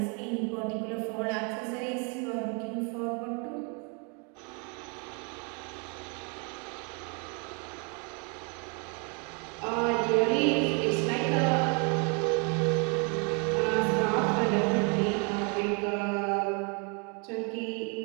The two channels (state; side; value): quieter; left; 35.3 dB